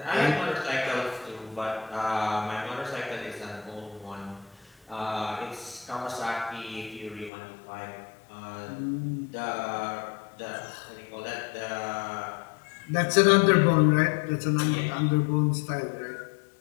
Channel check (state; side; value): drops out; right; at 7.3 s